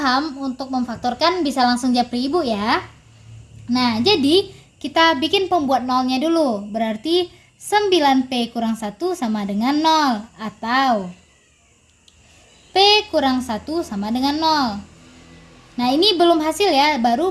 untuk memfaktorkan, bisa langsung japri ibu ya. Nah, jadi kita bikin pembuat nolnya dulu. Berarti 9P kurang 1 sama dengan 0. Atau P kurang 1 sama dengan 0. Nah, ini belum hasil ya,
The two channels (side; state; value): both; identical; correlation 1.00